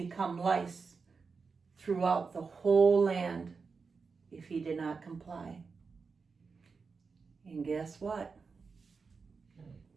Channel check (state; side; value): quieter; left; 4.9 dB